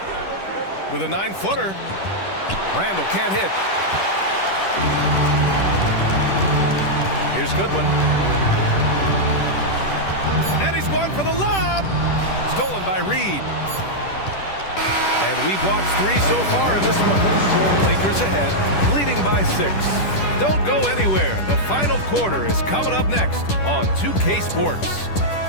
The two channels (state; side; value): late; right; 10 ms